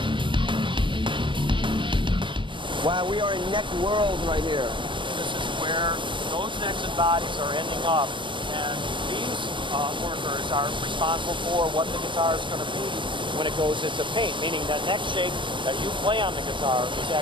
Wow, we are in neck world right here. This is where those necks and bodies are ending up, and these workers are responsible for what the guitar is going to be when it goes into paint, meaning that neck shape that you play on the guitar is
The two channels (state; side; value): late; left; 0.24 ms